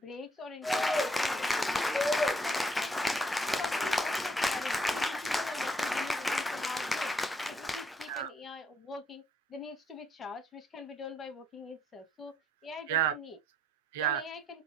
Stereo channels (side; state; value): both; normal; correlation 0.71